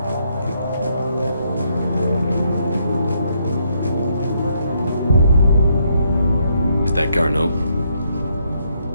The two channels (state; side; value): inverted; both; correlation -0.74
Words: Is that Garneau?